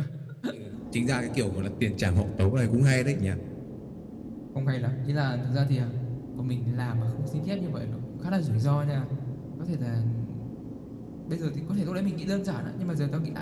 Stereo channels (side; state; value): both; identical; correlation 1.00